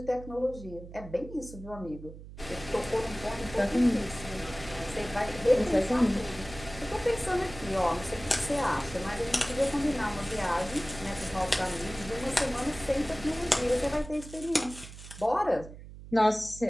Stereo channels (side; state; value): right; noise; hum, 15 dB below the sound